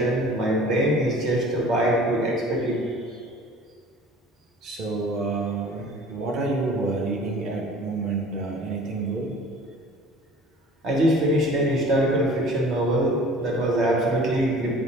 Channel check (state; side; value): normal; both; correlation 0.47